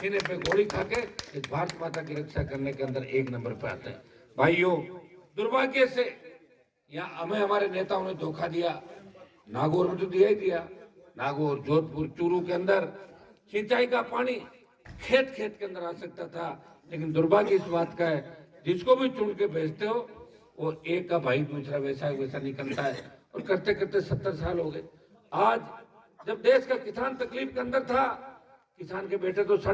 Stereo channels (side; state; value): both; identical; correlation 1.00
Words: पे गोली खा के इस भारत माता की रक्षा करने के अंदर 1 नंबर पे आते हैं। भाइयों, दुर्भाग्य से यहाँ हमें हमारे नेताओं ने धोखा दिया। नागौर में तो दिया ही दिया। नागौर, जोधपुर, चूरू के अंदर सिंचाई का पानी खेत खेत के अंदर आ सकता था, लेकिन दुर्भाग्य इस बात का है जिसको भी चुन के भेजते हो वो एक का भाई दूसरा वैसा निकलता है। और करते करते 70 साल हो गए। आज जब देश का किसान तकलीफ के अंदर था, किसान के बेटे तो